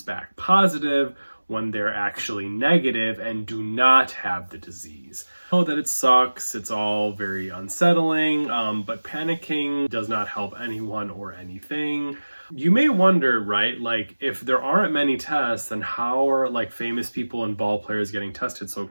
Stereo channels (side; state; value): both; inverted; correlation -1.00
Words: back positive when they're actually negative and do not have the disease. I know that it sucks, it's all very unsettling, but panicking does not help anyone or anything. You may wonder, right, like if there aren't many tests, then how are like famous people and ball players getting tested so